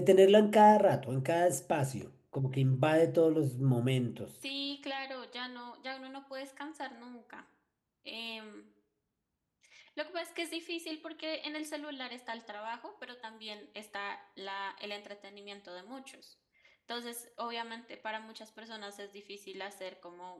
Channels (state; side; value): identical; both; correlation 1.00